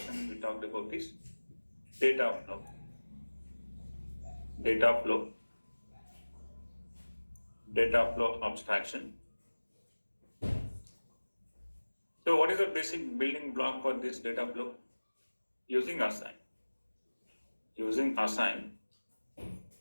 we talked about is data flow. Data flow abstraction. So what is the basic building block for this data flow? Using assign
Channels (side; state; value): both; inverted; correlation -1.00